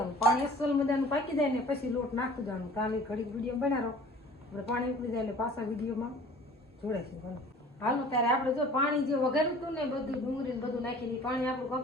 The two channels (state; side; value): normal; both; correlation 0.47